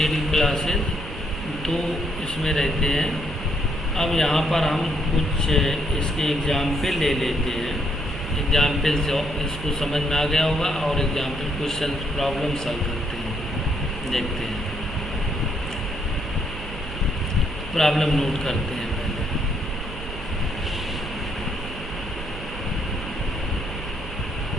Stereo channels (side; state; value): right; noise; hum, 11 dB below the sound